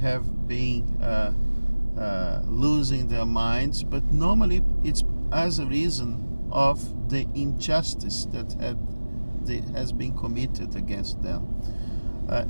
been losing their minds, but normally it's as a reason of the injustice that has been committed against them.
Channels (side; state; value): both; inverted; correlation -1.00